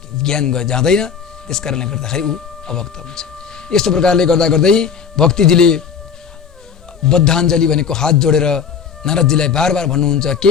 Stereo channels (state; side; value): quieter; right; 6.8 dB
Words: ज्ञान जाँदैन, त्यस कारणले गर्दाखेरि ऊ अभक्त हुन्छ। यस्तो प्रकारले गर्दा गर्दै भक्तिजीले बद्धाञ्जली भनेको हात जोडेर नारदजीलाई बार बार भन्नुहुन्छ